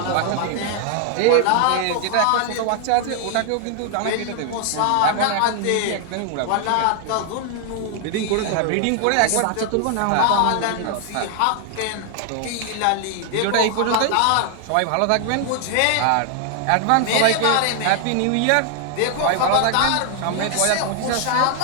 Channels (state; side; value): different; both; correlation 0.00